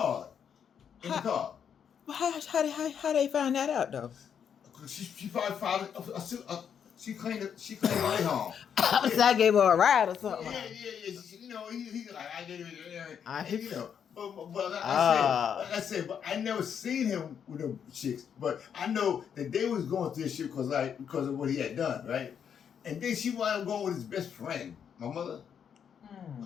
in the car. How they find that out though? She probably filed it. She claimed it right home. I gave her a ride or something. Yeah. You know, he's like, I gave it, you know. But like I said, but I never seen him with them chicks. But I know that they was going through this shit because of what he had done, right? And then she wound up going with his best friend, my mother. I'm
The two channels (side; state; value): right; quieter; 7.9 dB